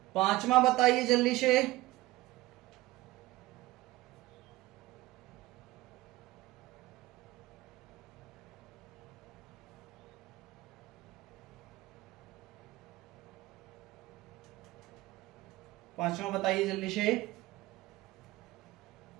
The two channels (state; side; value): quieter; left; 18.2 dB